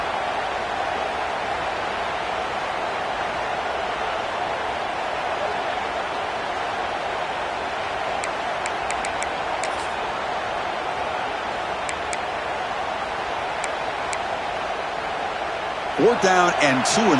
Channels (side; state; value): both; identical; correlation 1.00